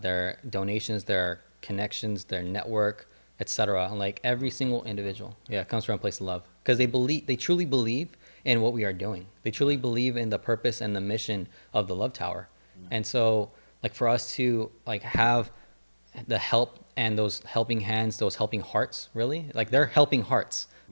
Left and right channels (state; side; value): inverted; both; correlation -1.00